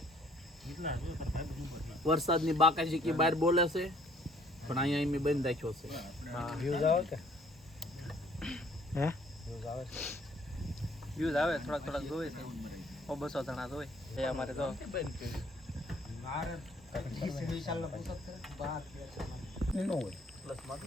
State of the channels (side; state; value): both; normal; correlation 0.60